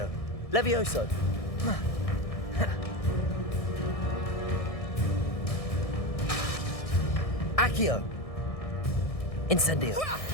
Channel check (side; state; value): right; late; 1.6 ms